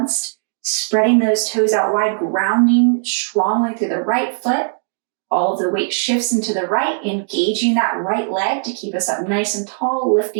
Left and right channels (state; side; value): silent; left; digital silence